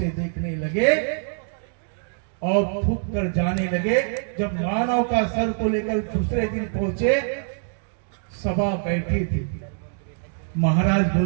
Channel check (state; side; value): silent; left; digital silence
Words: देखने लगे और थूक कर जाने लगे। जब मानव का सर को लेकर दूसरे दिन पहुंचे, सभा बैठी थी। महाराज